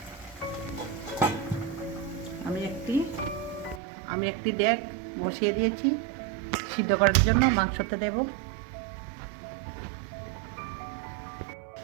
আমি একটি ডেক বসিয়ে দিয়েছি সিদ্ধ করার জন্য, মাংসতে দেব।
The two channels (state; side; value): drops out; left; at 3.8 s